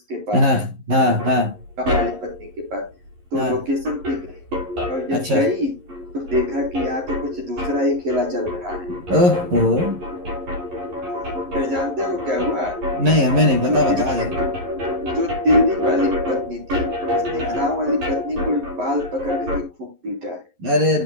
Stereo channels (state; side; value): late; left; 11 ms